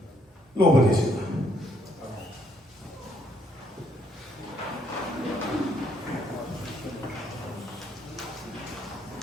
Louva a Deus.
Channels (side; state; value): both; normal; correlation 0.70